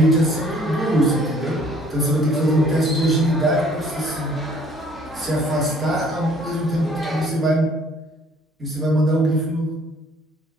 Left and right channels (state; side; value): normal; both; correlation 0.58